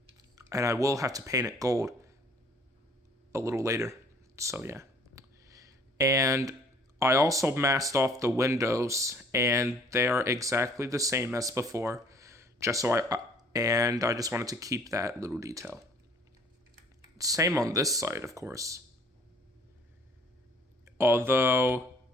and I will have to paint it gold a little later, so yeah. And I also masked off the windows, and they are exactly the same as before, I just wanted to keep that little detail. Same on this side, of course. Although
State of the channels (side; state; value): both; normal; correlation 0.56